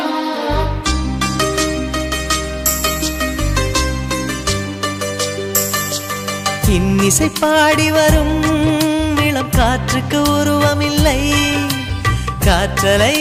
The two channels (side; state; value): both; identical; correlation 1.00